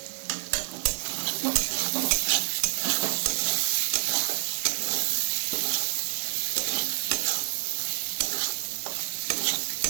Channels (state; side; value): silent; left; 59 dB below the other